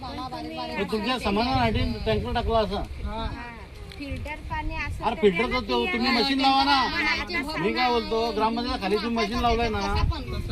हे तुमच्या समाधानासाठी टँकर टाकला असा. फिल्टर पाणी असं अरे फिल्टरचं तुम्ही मशीन लावा ना. मी काय बोलतो, ग्रामपंचायत खाली तुम्ही मशीन लावलंय ना,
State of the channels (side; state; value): both; identical; correlation 1.00